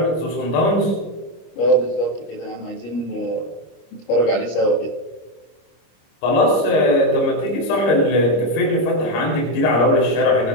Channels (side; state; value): right; late; 25 ms